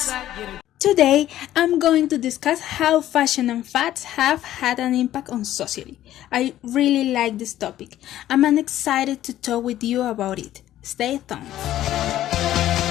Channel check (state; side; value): quieter; right; 13.1 dB